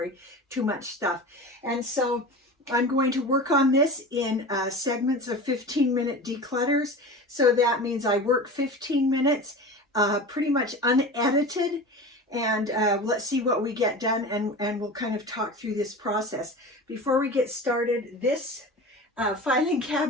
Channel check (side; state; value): both; normal; correlation 0.33